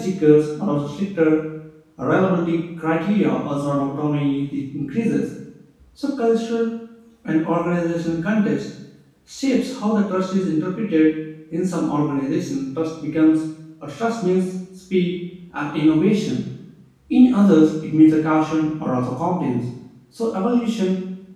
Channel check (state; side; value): identical; both; correlation 1.00